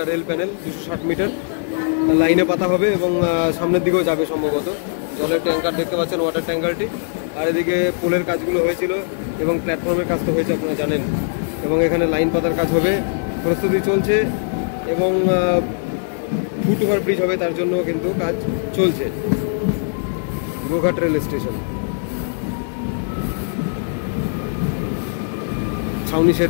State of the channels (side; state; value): right; silent; digital silence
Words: রেল প্যানেল, 260 মিটার লাইনে পাতা হবে এবং সামনের দিকেও যাবে সম্ভবত। জলের ট্যাঙ্কার দেখতে পাচ্ছেন, ওয়াটার ট্যাঙ্কারটি। আর এদিকে পোলের কাজগুলো হয়েছিল এবং প্ল্যাটফর্মের কাজ তো হয়েছে, আপনারা জানেন। এবং এখানে লাইন পাতার কাজ হবে, প্রস্তুতি চলছে এবং ফুট ওভার ব্রিজ হবে, তার জন্য কিন্তু কাজ চলছে। গোঘাট রেল স্টেশন, ছাউনি শেড